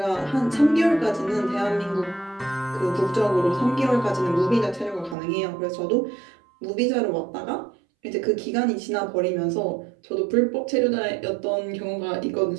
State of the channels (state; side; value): drops out; left; at 5.2 s